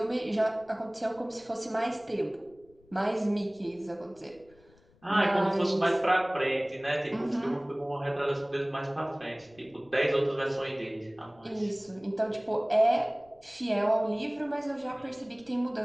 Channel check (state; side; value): noise; left; rumble, 30 dB below the sound